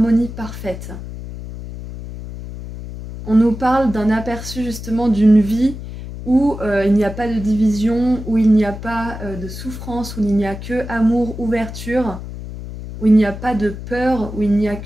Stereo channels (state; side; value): noise; left; hum, 10 dB below the sound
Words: parfaite. On nous parle d'un aperçu justement d'une vie où il n'y a pas de division, où il n'y a pas de souffrance, où il n'y a que amour, ouverture, où il n'y a pas de peur, où il n'y a